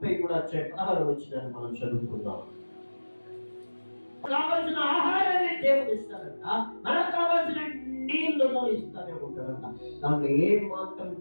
మనం చదువుకుందాం. కావలసిన ఆహారాన్ని దేవుడు ఇస్తాడంట, మనకు కావలసిన నీళ్లను ఇస్తానే ఉంటాడంట. దాంట్లో ఏ మాత్రం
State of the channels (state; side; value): inverted; both; correlation -1.00